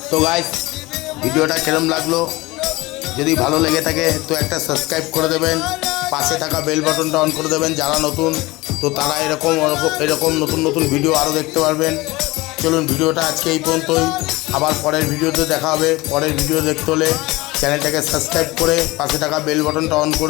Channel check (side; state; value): right; quieter; 21.2 dB